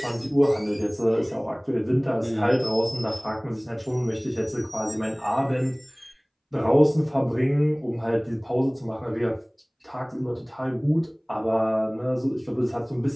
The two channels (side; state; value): both; identical; correlation 1.00